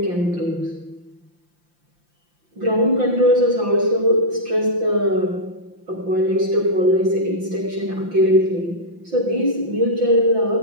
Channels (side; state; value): left; late; 5.8 ms